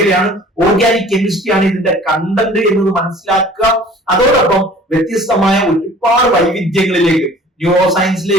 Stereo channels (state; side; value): normal; both; correlation 0.48